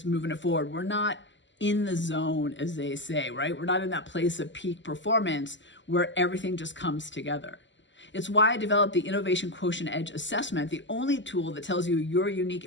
moving it forward. We're not in the zone, as they say, right? We're not in that place of peak performance where everything just comes together. It's why I developed the Innovation Quotient Edge Assessment, the only tool that tells you your unique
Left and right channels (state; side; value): late; right; 0.54 ms